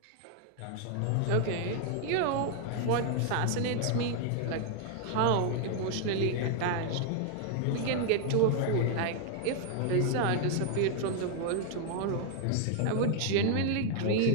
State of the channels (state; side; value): different; both; correlation 0.00